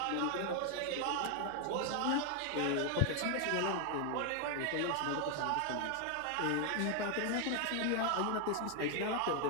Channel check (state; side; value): different; both; correlation 0.00